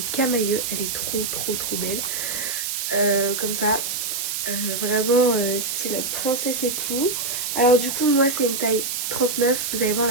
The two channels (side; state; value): right; noise; hiss, 2 dB below the sound